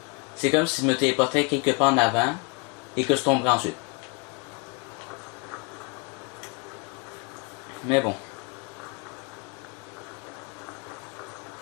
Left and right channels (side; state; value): right; quieter; 30.4 dB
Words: c'est comme si je me téléportais quelque part en avant et que je tomberais ensuite. Mais bon.